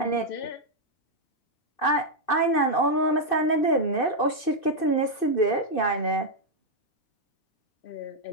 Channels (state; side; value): late; right; 2.6 ms